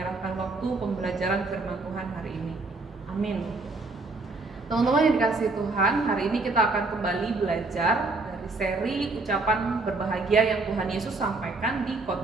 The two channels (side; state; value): left; quieter; 3.5 dB